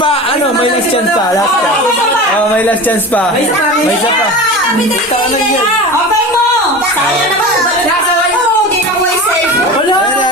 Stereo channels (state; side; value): normal; both; correlation 0.31